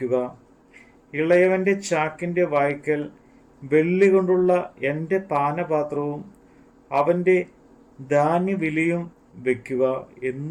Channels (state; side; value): identical; both; correlation 1.00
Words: ഇളയവൻ്റെ ചാക്കിൻ്റെ വായ്ക്കൽ വെള്ളി കൊണ്ടുള്ള എൻ്റെ പാനപാത്രവും അവൻ്റെ ധാന്യവിലയും വയ്ക്കുക